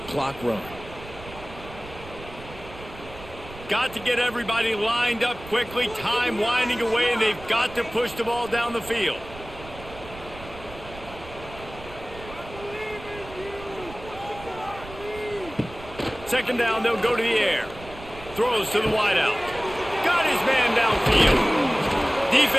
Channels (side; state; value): right; noise; rumble, 16 dB below the sound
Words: clock run. Got to get everybody lined up quickly. Time winding away, and they've got to push the ball down the field. Second down, they'll go to the air. Throws to the wideout. Got his man downfield.